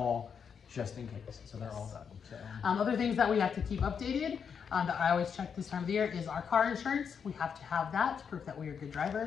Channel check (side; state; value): right; quieter; 6.8 dB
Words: just in case, so they're all done. So. Other things that we have to keep updated, that I always check this time of the year, is our car insurance. We have to have that to prove that we are good